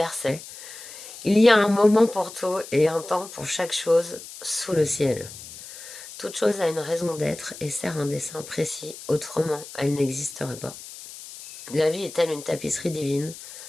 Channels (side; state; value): left; noise; hiss, 14 dB below the sound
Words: il y a un moment pour tout et un temps pour chaque chose sous le ciel. Toute chose a une raison d'être et sert un dessein précis, autrement elle n'existerait pas. La vie est telle une tapisserie divine,